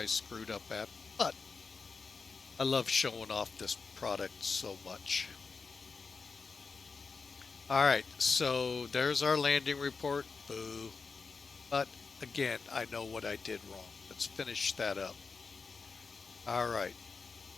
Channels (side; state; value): right; quieter; 4.8 dB